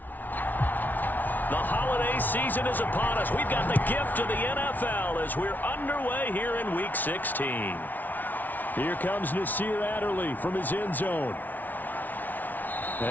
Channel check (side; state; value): right; late; 0.082 ms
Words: The holiday season is upon us. We've got the gift of the NFL as we're underway here in Week 16. Here comes Nasir Adderley from his end zone.